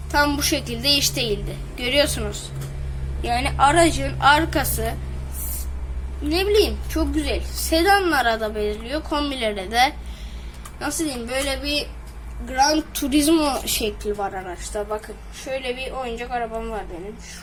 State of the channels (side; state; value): both; identical; correlation 1.00